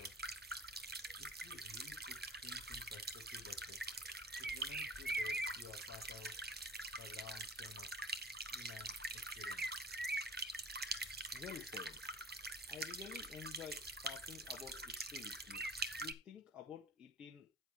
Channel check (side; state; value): both; normal; correlation 0.43